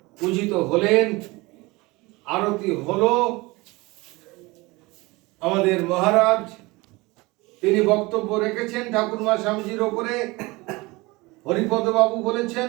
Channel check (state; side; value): quieter; left; 23.0 dB